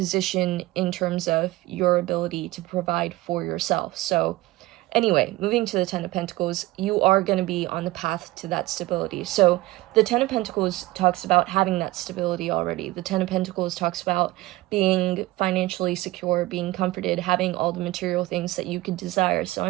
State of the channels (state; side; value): quieter; left; 18.8 dB